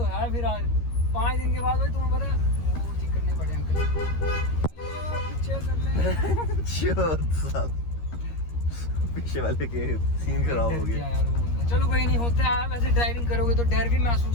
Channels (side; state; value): right; late; 13 ms